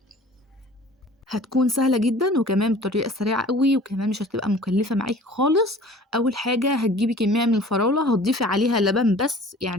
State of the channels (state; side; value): normal; both; correlation 0.46